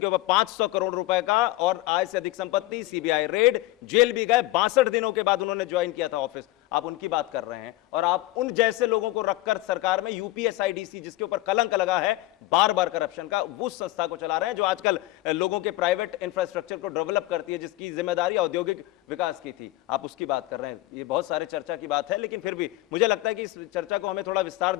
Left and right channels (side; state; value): right; quieter; 17.7 dB